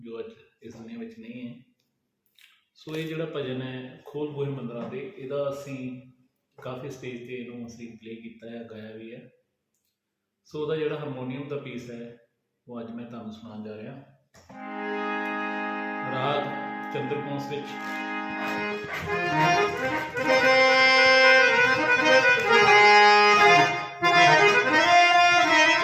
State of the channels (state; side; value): identical; both; correlation 1.00